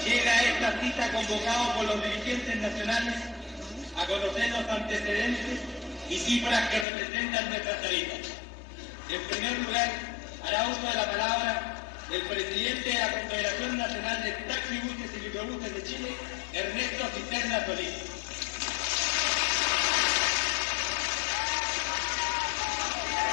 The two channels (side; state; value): right; drops out; at 6.9 s